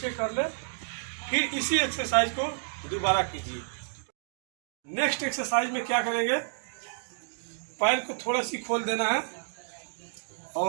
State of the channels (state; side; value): silent; left; digital silence